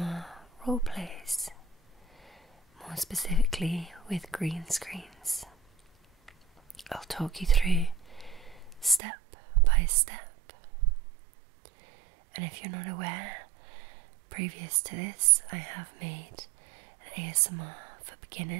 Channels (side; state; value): left; drops out; at 9.0 s